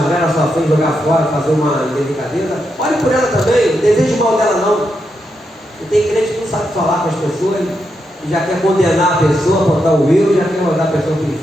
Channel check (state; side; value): normal; both; correlation 0.83